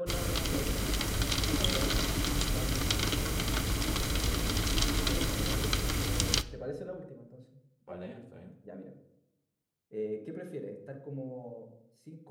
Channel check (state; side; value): identical; both; correlation 1.00